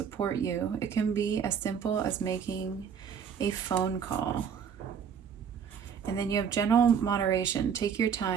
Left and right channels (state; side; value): quieter; left; 7.3 dB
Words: you. It can be as simple as making a phone call. And then you have general moderation. Take your